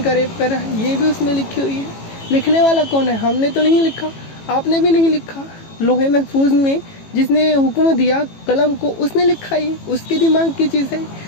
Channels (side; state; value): right; late; 18 ms